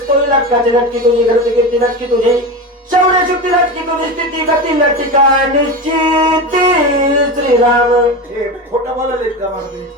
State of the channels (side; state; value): both; normal; correlation 0.23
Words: तोही लटकाचे लटकी तुझी घरची कीर्ती लटकी तुझी शौर्य शुक्ती लटकी तुझी स्थिती गती लटका निश्चिती श्रीराम. हे खोटं बोलायला का महाराज